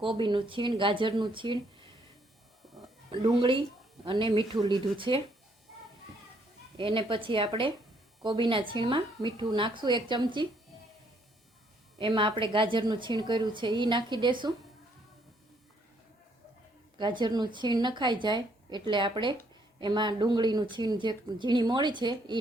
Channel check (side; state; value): both; normal; correlation 0.69